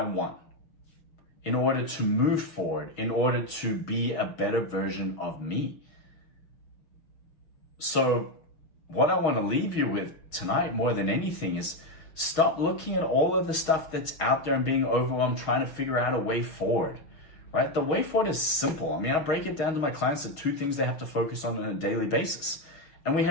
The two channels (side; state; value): right; late; 6.3 ms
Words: want, in order to move forward, in order to be a better version of me. So what I want to leave you with tonight more than anything is stop looking at all of the stuff that's out there and being overwhelmed, trying to figure out a way forward, right? The way forward is simple. I break it down to my clients to 2 things they have to focus on a daily basis. And we